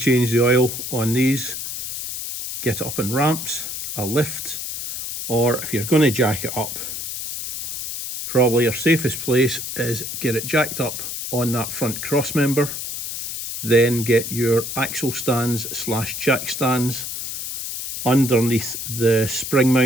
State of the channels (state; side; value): noise; left; hiss, 6 dB below the sound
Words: the oil on these, get it up in ramps, a lift, or if you're going to jack it up, probably your safest place is get it jacked up on that front cross member, then get your axle stands slash jack stands underneath the spring